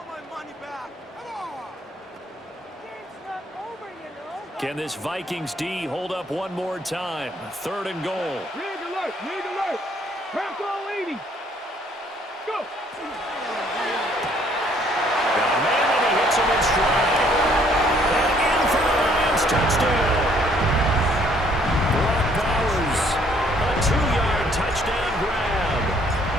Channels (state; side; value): normal; both; correlation 0.63